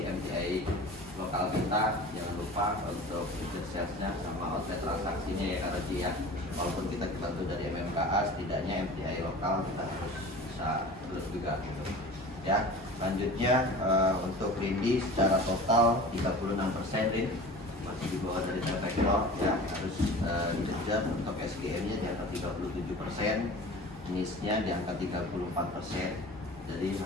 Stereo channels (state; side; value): normal; both; correlation 0.38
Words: MTI lokal kita jangan lupa untuk tiket sales-nya sama outlet transaksinya ya Karoji ya. Walaupun kita dibantu dari MMKA, setidaknya MTI lokal kita harus bisa terus juga gitu ya. Selanjutnya untuk Rindi secara total 36% Rin, masih di bawah dari T-Vector ya, harus dikejar. Untuk SGM-nya di angka 37%, NIS-nya di angka 34%. Jadi